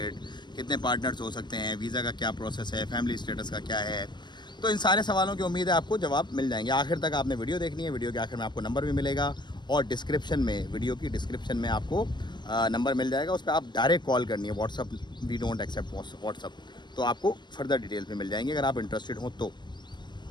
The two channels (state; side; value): late; right; 0.22 ms